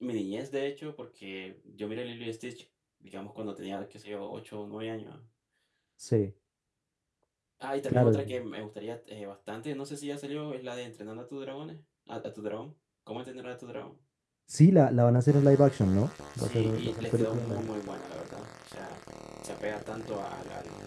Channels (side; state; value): both; identical; correlation 1.00